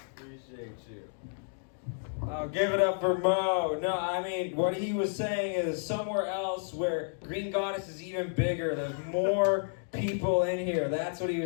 Appreciate you. Oh, give it up for Mo. No, what he was saying is somewhere else where Green Goddess is even bigger. There's more people in here. That's what he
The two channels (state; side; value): silent; right; digital silence